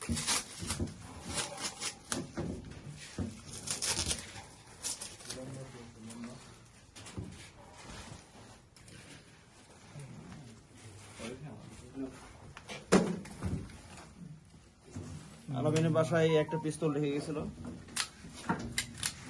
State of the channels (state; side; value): identical; both; correlation 1.00